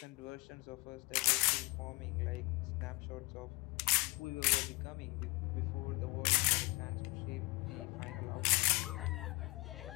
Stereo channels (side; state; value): right; quieter; 26.2 dB